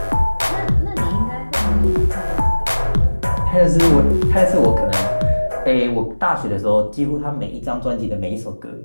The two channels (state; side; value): inverted; both; correlation -1.00